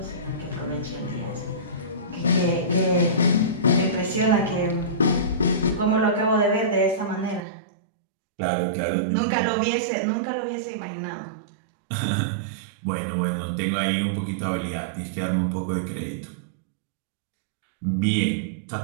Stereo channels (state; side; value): drops out; left; at 7.4 s